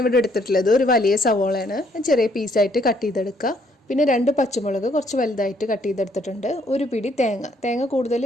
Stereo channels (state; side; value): normal; both; correlation 0.68